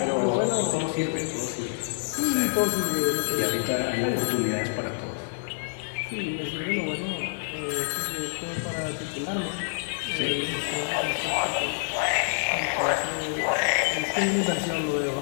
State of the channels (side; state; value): right; silent; digital silence